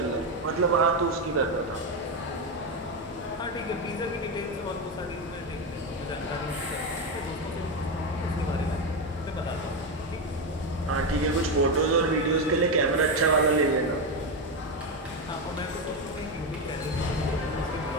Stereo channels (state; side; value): normal; both; correlation 0.10